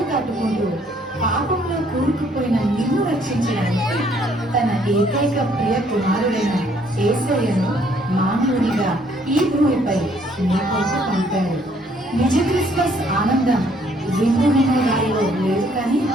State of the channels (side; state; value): both; normal; correlation 0.64